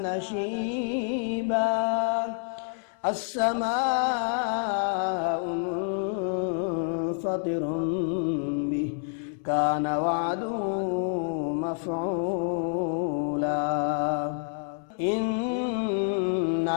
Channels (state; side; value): silent; right; 59 dB below the other